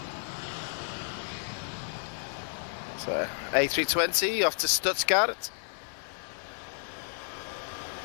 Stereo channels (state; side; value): silent; right; digital silence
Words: So, A320 off to Stuttgart.